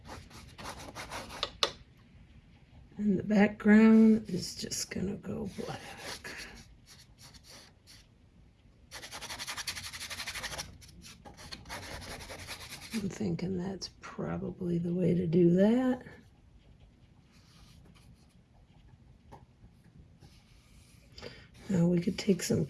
And the background is just gonna go black. I'm thinking that's probably the way to do that. Now we could take some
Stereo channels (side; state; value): both; identical; correlation 1.00